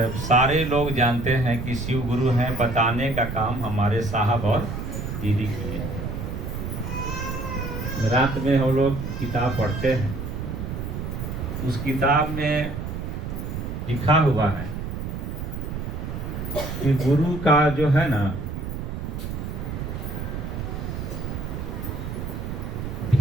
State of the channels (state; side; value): noise; right; rumble, 5 dB below the sound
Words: सारे लोग जानते हैं कि शिव गुरु हैं। बताने का काम हमारे साहब और दीदी किए। रात में हम लोग किताब पढ़ते हैं, उस किताब में लिखा हुआ है कि गुरु का जो है ना,